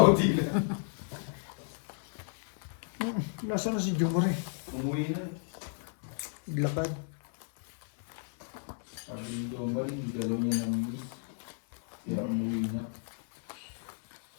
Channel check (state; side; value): silent; right; 55 dB below the other